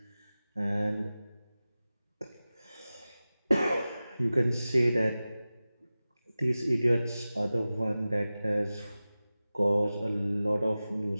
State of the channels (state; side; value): inverted; both; correlation -0.96